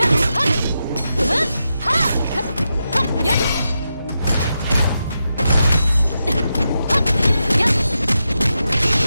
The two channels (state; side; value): inverted; both; correlation -0.87